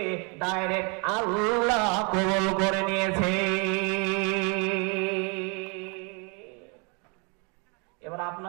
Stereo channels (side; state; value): left; quieter; 33.4 dB